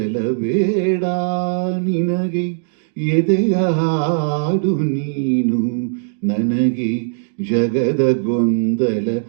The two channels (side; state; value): left; silent; digital silence